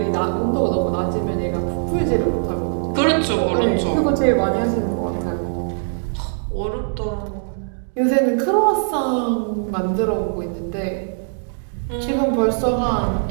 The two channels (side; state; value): left; silent; 65 dB below the other